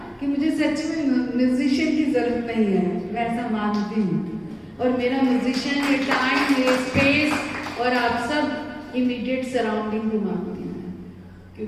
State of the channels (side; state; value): both; identical; correlation 1.00